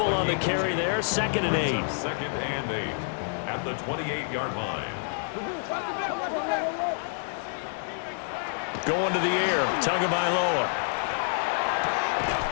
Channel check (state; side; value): silent; right; digital silence